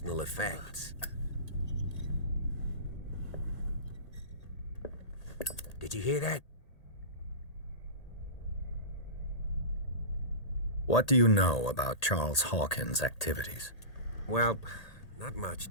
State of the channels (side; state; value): right; late; 1.8 ms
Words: effects. Did you hear that? What do you know about Charles Hawkins' activities? Well, not much,